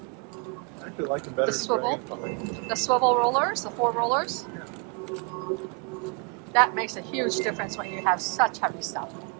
I actually like them better. The swivel rollers, the 4 rollers. Yeah. That makes a huge difference when you have such heavy stuff.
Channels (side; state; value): left; quieter; 34.9 dB